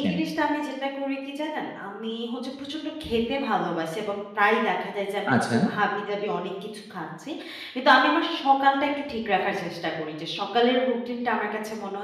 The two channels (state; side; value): identical; both; correlation 1.00